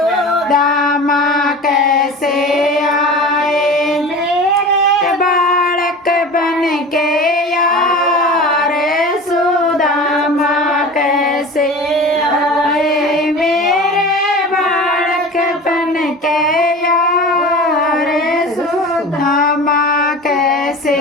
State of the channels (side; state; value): both; normal; correlation 0.35